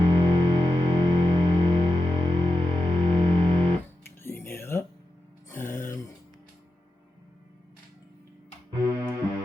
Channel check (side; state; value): both; normal; correlation 0.90